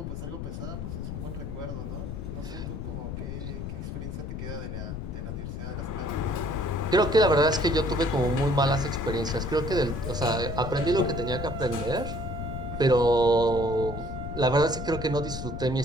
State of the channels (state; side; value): noise; left; rumble, 6 dB below the sound